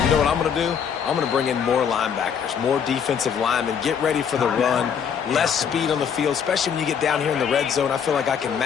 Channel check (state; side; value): quieter; right; 7.4 dB